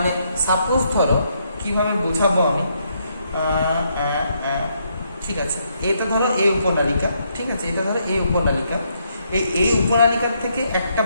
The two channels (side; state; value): both; inverted; correlation -0.75